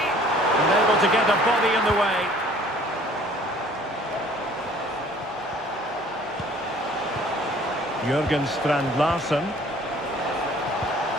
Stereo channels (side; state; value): both; normal; correlation 0.53